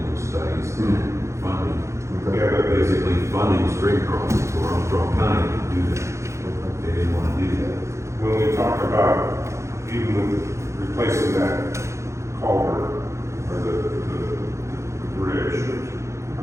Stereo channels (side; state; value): left; late; 0.14 ms